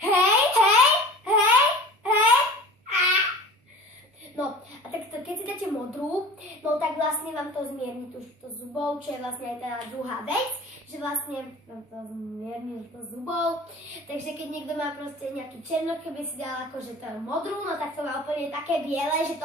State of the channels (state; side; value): normal; both; correlation 0.40